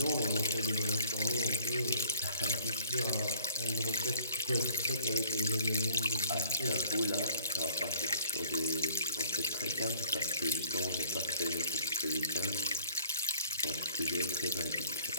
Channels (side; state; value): both; inverted; correlation -0.54